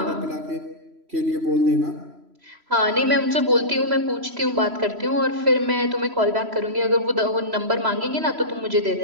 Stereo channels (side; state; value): left; late; 3.0 ms